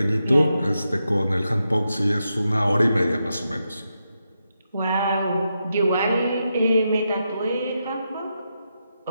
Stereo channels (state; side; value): inverted; both; correlation -0.86